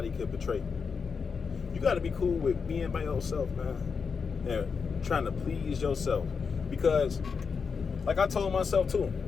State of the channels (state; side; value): quieter; right; 5.6 dB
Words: could betray you. You got to be cool with being by yourself, man, and trying to please yourself. Because, like I told myself too,